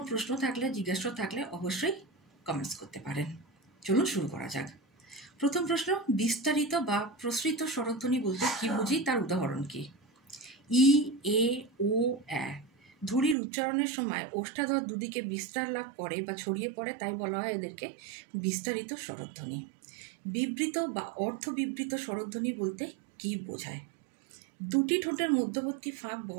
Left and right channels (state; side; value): drops out; left; at 13.4 s